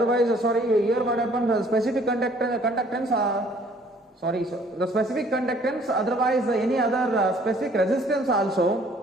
here what happens, specific conductance the specific conductance, otherwise any other specific resistance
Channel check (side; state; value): both; normal; correlation 0.58